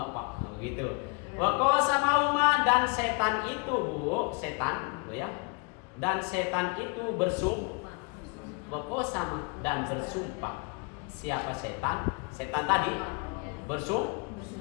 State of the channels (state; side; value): quieter; right; 32.3 dB